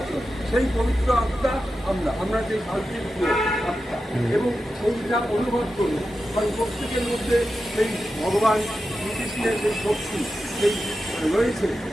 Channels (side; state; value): both; normal; correlation 0.90